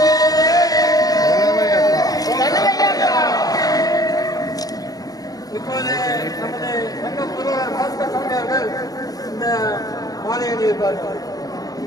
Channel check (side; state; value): right; late; 0.18 ms